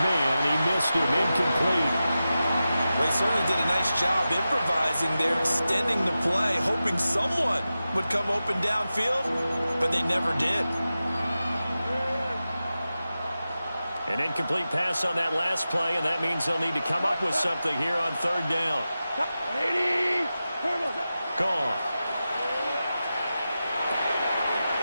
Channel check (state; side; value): inverted; both; correlation -0.93